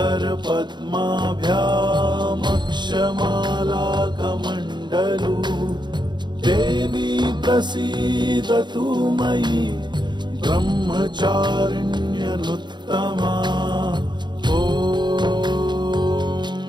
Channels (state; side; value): late; left; 0.22 ms